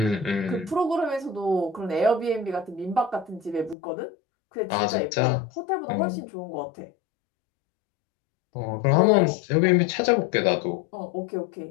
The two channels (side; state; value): right; drops out; at 3.8 s